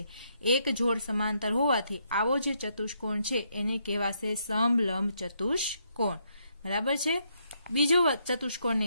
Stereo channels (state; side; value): inverted; both; correlation -0.75